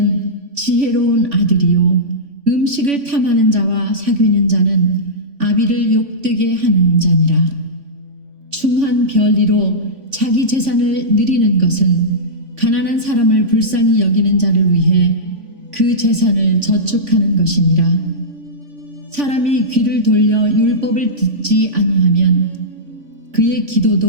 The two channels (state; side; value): late; left; 3.5 ms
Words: 지혜로운 아들이요 음식을 탐하는 자와 사귀는 자는 아비를 욕되게 하는 자니라. 충한 별리로 자기 재산을 누리는 것은 가난한 사람을 불쌍히 여기는 자를 위해 그 재산을 저축하는 것이니라. 사람이 귀를 돌려 율법을 듣지 아니하면 그의